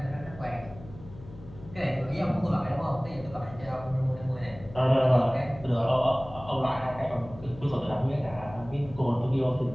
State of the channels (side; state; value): left; noise; hum, 17 dB below the sound